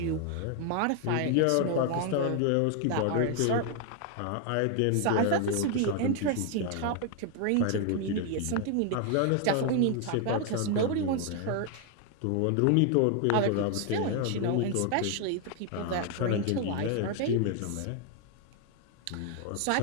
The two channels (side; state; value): both; different; correlation 0.01